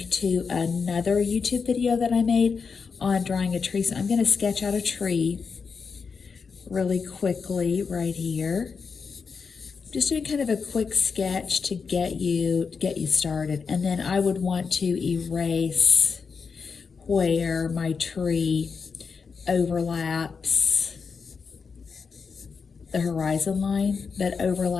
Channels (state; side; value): quieter; right; 5.5 dB